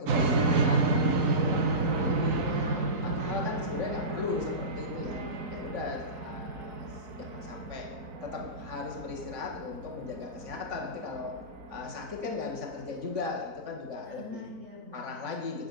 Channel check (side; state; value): left; late; 3.9 ms